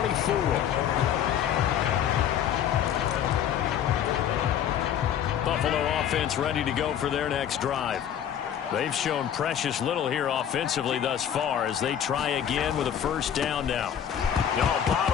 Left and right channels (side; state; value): right; quieter; 9.5 dB